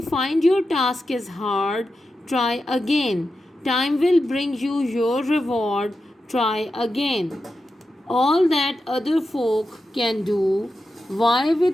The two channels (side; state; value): both; normal; correlation 0.90